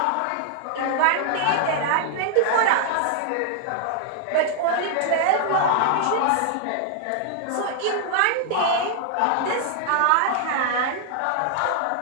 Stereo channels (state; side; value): different; both; correlation -0.01